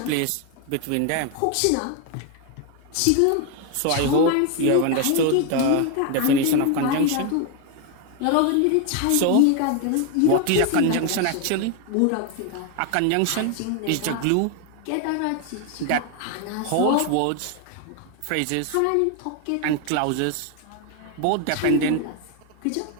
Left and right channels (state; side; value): different; both; correlation 0.01